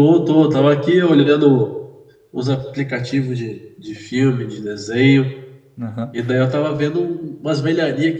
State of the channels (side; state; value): both; identical; correlation 1.00